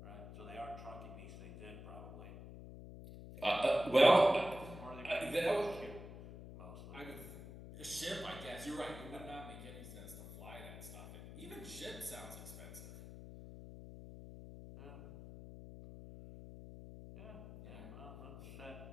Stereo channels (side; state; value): left; noise; hum, 13 dB below the sound